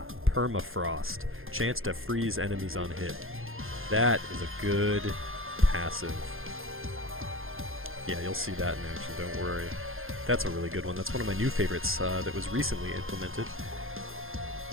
Permafrost. Chance to freeze enemies on hit. That is a good passive. Yeah, you'll see that in action, don't worry. That's a really good one. That's one of my new favorites that was recently implemented.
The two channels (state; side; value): late; left; 0.60 ms